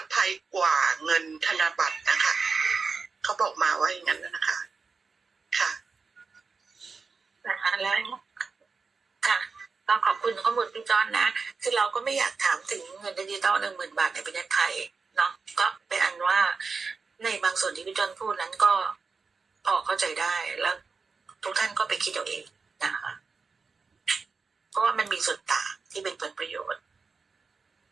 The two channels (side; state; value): left; quieter; 4.8 dB